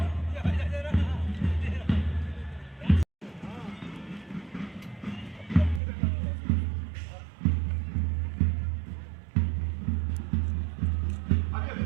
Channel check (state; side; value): drops out; left; at 5.8 s